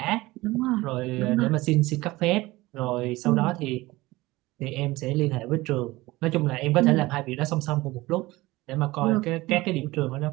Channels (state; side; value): quieter; left; 19.8 dB